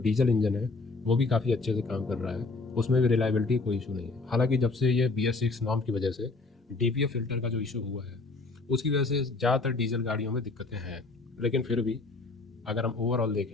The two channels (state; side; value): quieter; right; 3.7 dB